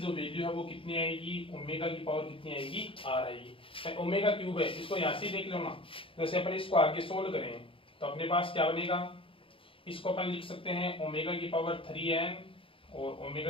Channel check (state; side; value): late; right; 0.26 ms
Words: वैल्यू है वो कितनी आएगी, ओमेगा की पावर कितनी आएगी, r आएगी। ओमेगा क्यूब है, इसको यहाँ से देख लो ना, जैसे अपन इसको आगे सोल्व करें तो अपने पास क्या बनेगा, इसको अपन लिख सकते हैं ओमेगा की पावर 3n और ओमेगा